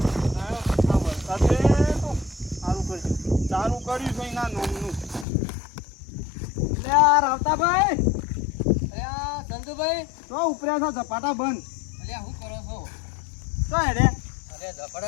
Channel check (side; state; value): right; drops out; at 5.2 s